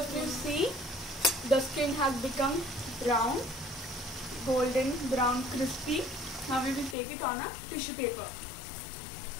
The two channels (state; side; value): drops out; right; at 7.0 s